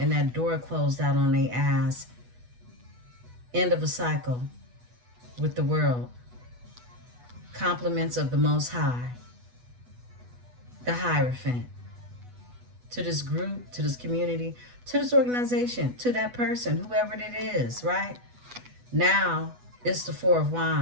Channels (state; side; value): late; left; 8.1 ms